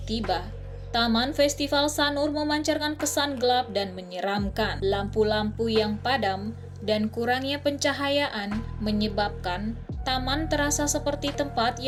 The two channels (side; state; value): both; identical; correlation 1.00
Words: tiba, Taman Festival Sanur memancarkan kesan gelap dan menyeramkan. Lampu-lampu yang padam dan kurangnya pencahayaan menyebabkan taman terasa seperti tempat